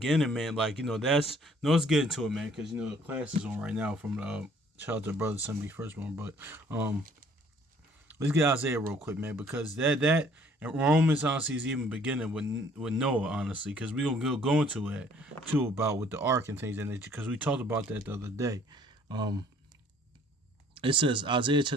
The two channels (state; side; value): normal; both; correlation 0.58